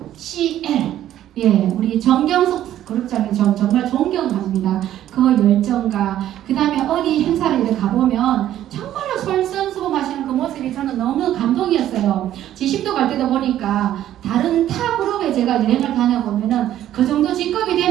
CL 예, 우리 정경석 그룹장님 정말 존경합니다. 그 열정과 그 다음에 어디 행사를 이렇게 가보면 정말로 솔선수범하시는 그 모습이 저는 너무 감동이었어요. 지심도 갈 때도 보니까 다른 타 그룹에 제가 여행을 다녀보면은 그 정도 직급이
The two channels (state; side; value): quieter; left; 12.2 dB